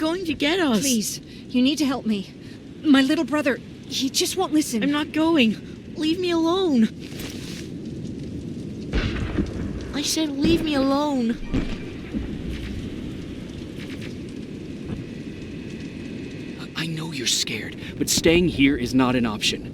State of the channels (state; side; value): identical; both; correlation 1.00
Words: to get us. Please, you need to help me. My little brother, he just won't listen. I'm not going. Leave me alone. I said leave me alone. I know you're scared, but staying here is not an